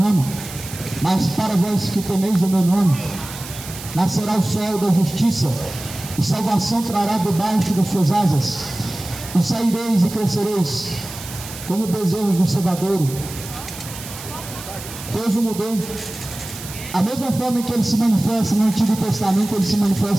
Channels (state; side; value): noise; right; hiss, 12 dB below the sound